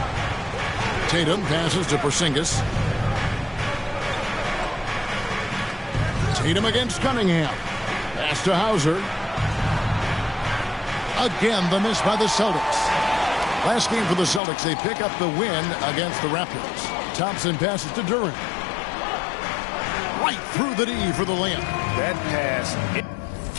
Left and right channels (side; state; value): right; drops out; at 14.4 s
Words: Tatum passes to Porzingis. Tatum against Cunningham. Pass to Hauser. Again, the miss by the Celtics. Last game for the Celtics, they pick up the win against the Raptors. Thompson passes to Durant. Right through the D for the layup. That pass